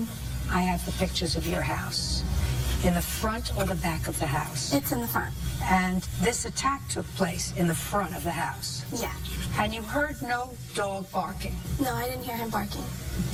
I have the pictures of your house, in the front or the back of the house? It's in the front. And this attack took place in the front of the house? Yeah. And you heard no dog barking? No, I didn't hear him barking.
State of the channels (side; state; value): both; identical; correlation 1.00